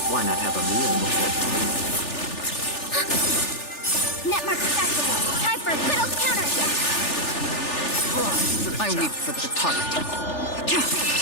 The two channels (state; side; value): late; right; 3.4 ms